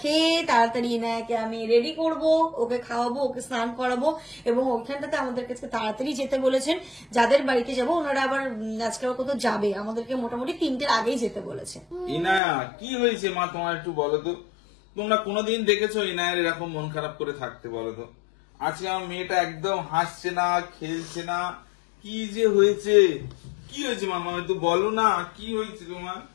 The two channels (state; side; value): drops out; right; at 12.4 s